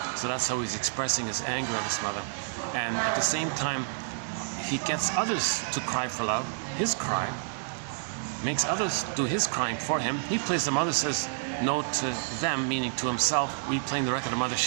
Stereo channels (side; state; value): left; silent; digital silence